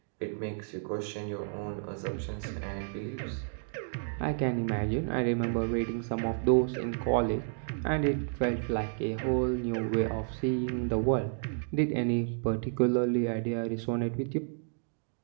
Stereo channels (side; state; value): left; silent; digital silence